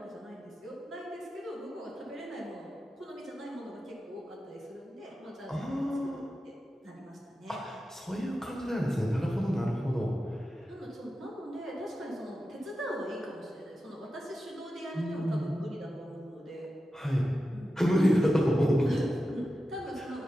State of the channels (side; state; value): both; normal; correlation 0.92